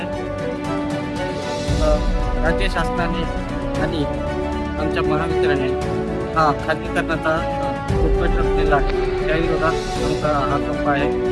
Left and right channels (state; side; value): identical; both; correlation 1.00